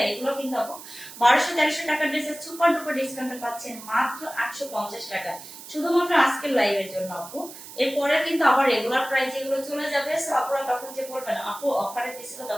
এগুলো কিন্তু আপু 1200-1300 টাকার ড্রেসের সুপার ডুপার ডিসকাউন্টে পাচ্ছেন মাত্র 850 টাকা, শুধুমাত্র আজকের লাইভের জন্য আপু। এরপরে কিন্তু আবার রেগুলার প্রাইস এগুলো চলে যাবে। সো আপনারা তখন যে বলবেন আপু অফারে দিছিল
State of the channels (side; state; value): right; noise; hiss, 15 dB below the sound